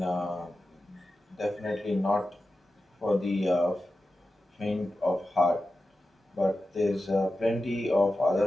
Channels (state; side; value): normal; both; correlation 0.92